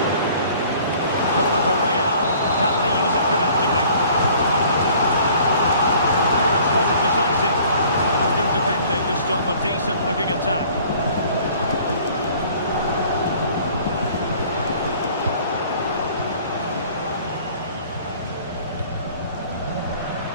Corner for Real. Can they use it productively? Clearance wasn't decisive. Good defending to stop a decent-looking attack.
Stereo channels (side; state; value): both; inverted; correlation -0.52